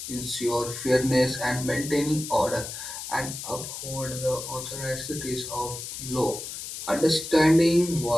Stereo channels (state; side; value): noise; left; hiss, 8 dB below the sound